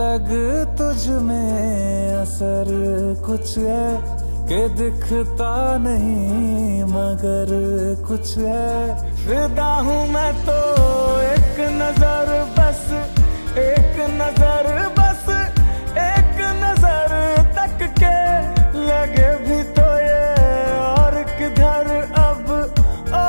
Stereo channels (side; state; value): both; inverted; correlation -1.00